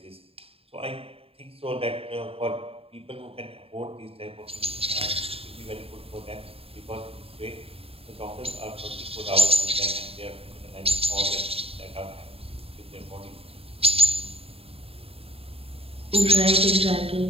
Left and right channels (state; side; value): late; left; 0.28 ms